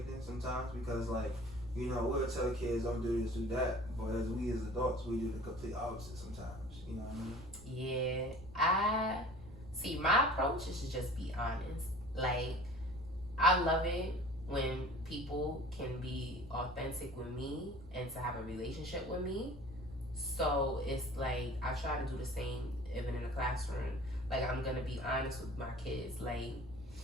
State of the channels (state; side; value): noise; right; rumble, 18 dB below the sound